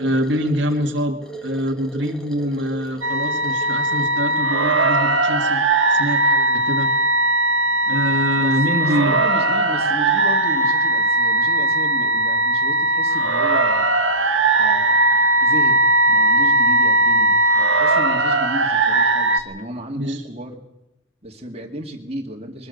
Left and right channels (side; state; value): both; normal; correlation -0.17